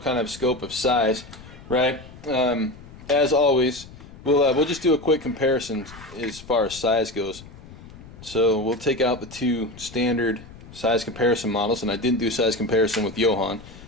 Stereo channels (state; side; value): noise; left; rumble, 18 dB below the sound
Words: of scope of size, right? As always, we'll just do a quick comparison as far as size goes. So we'll take out the two standard size comparison models, and I didn't do size comparison with Johan,